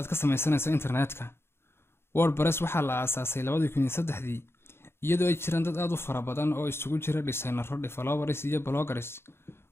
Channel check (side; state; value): right; late; 0.12 ms